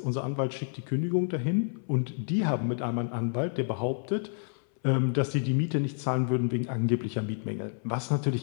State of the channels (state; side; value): silent; right; 58 dB below the other